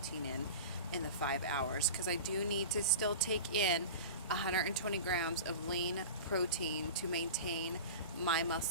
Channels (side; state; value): both; inverted; correlation -0.32